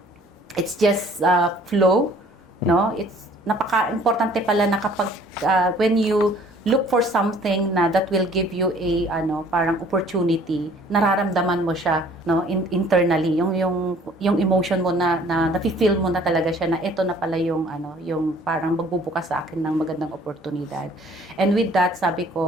it's just flow, no? It's napaka-importante pala na kapag when you look for something na that will give you a parang opportunity, nararamdaman mo siya, no, internally, yung emotion mo na nafi-feel mo na talaga siya na ito na pala yung parang magbubukas sa akin ng magandang oportunidad. And with that, sabi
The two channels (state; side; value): normal; both; correlation 0.55